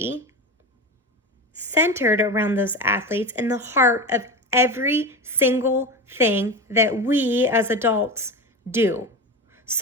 centered around those athletes in the heart of every single thing that we as adults do.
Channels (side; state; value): both; normal; correlation 0.25